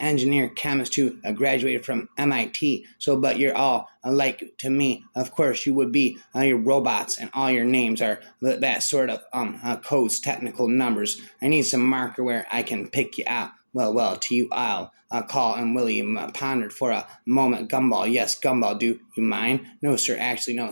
chemist who graduated from MIT. But you're all alike to me. Of course, you would be your robots, and all your names are that sort of codes, technical numbers. I need some marker where I can pick you out. Well, to you I'll call, and William pondered for a moment. Gumball, yes, Gumball, do you mind? No, sir, actually, no,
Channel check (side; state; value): both; inverted; correlation -1.00